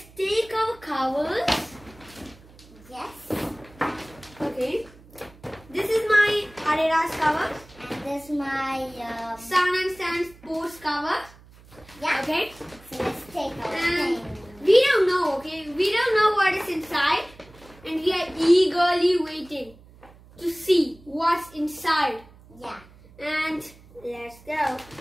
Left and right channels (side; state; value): right; noise; hum, 24 dB below the sound